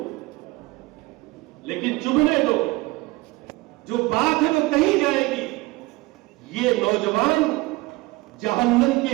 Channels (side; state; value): left; quieter; 21.7 dB